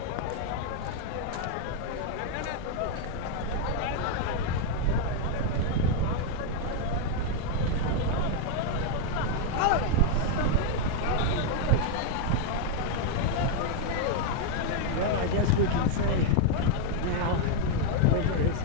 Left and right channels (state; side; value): different; both; correlation 0.00